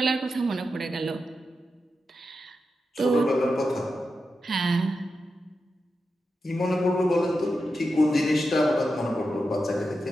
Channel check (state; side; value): normal; both; correlation 0.89